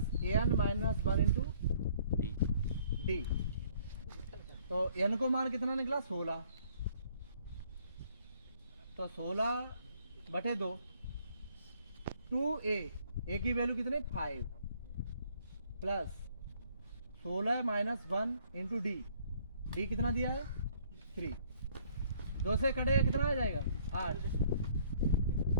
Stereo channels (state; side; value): inverted; both; correlation -0.61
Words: n minus 1 into D. तो n को मान कितना निकला 16। तो 16 बटे 2 2a की वैल्यू कितने 5 plus 16 minus 1 into D. D कितना दिया है 3। 2 से कटेगा कितना आ जाएगा 8।